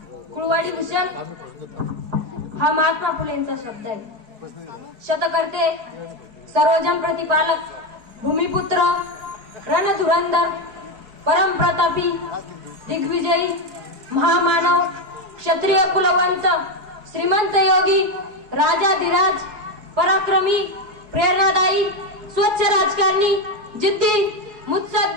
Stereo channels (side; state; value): left; late; 4.7 ms